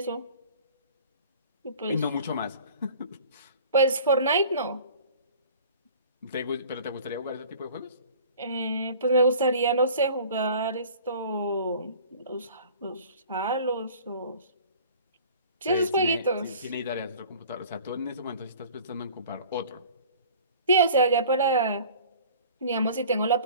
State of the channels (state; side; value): inverted; both; correlation -0.46